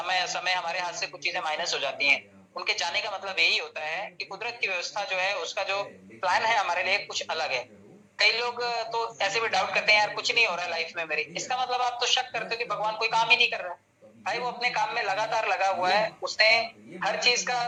समय हमारे हाथ से कुछ चीजें माइनस हो जाती हैं। उनके जाने का मतलब यही होता है कि कुदरत की व्यवस्था जो है, उसका जो प्लान है हमारे लिए कुछ अलग है। कई लोग तो ऐसे भी डाउट करते हैं, यार कुछ नहीं हो रहा है लाइफ में मेरी। इसका मतलब आप तो शक करते हो कि भगवान कोई काम ही नहीं कर रहा है। भाई वो अपने काम में लगातार लगा हुआ है, उसने हर चीज का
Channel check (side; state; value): both; identical; correlation 1.00